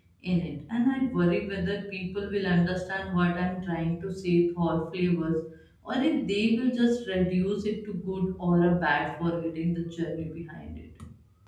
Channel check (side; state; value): both; identical; correlation 1.00